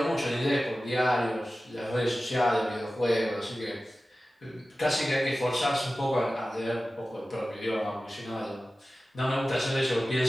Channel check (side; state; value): both; normal; correlation 0.95